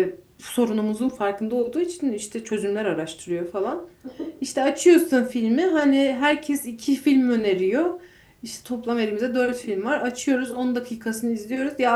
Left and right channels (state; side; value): identical; both; correlation 1.00